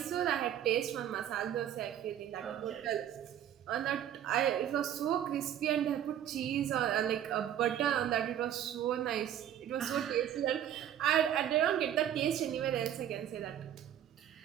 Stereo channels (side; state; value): left; quieter; 10.6 dB